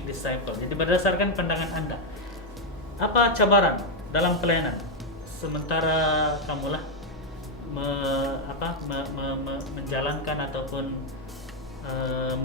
disciple? Jadi berdasarkan pandangan Anda, apa cabaran dalam pelayanan sementara kamulah menjalankan ataupun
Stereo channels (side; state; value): both; normal; correlation 0.02